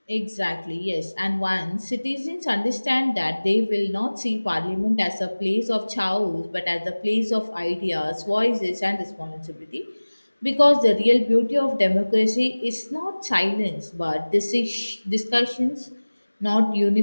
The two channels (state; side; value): inverted; both; correlation -1.00